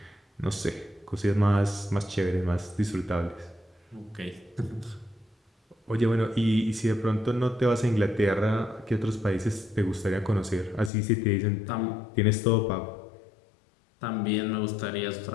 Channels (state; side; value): drops out; right; at 10.9 s